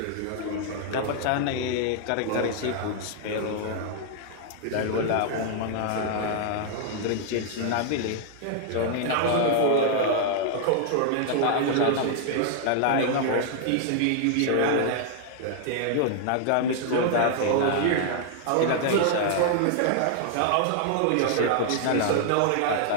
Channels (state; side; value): different; both; correlation 0.00